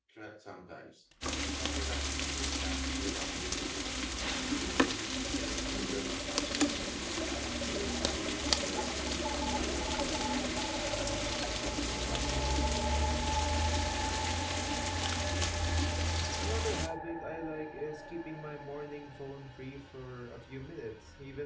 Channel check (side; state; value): both; identical; correlation 1.00